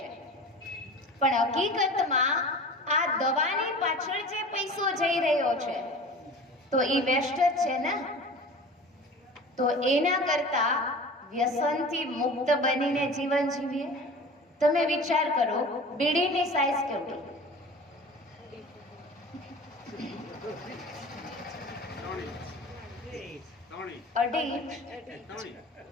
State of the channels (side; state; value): both; normal; correlation 0.38